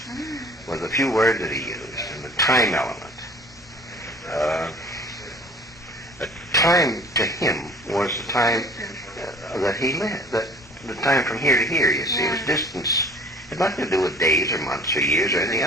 was the few words that he used and the time element. The time to him was the time that he lived, the time from here to here, you see, it was distance. It had nothing to do with days or months or years or anything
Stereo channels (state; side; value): normal; both; correlation 0.48